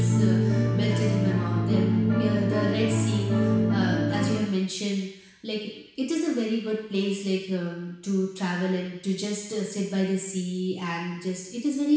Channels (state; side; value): identical; both; correlation 1.00